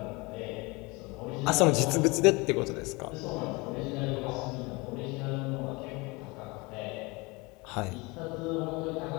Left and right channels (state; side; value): quieter; right; 25.7 dB